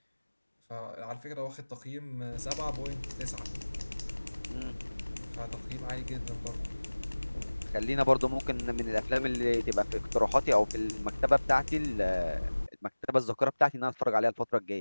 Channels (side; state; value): both; inverted; correlation -1.00